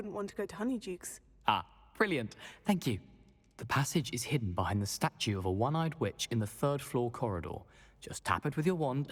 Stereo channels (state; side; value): identical; both; correlation 1.00